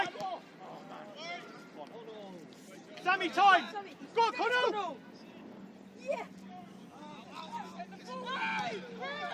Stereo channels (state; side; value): identical; both; correlation 1.00